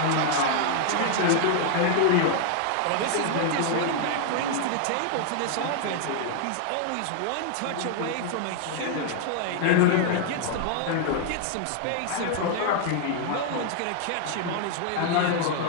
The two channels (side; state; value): both; different; correlation 0.00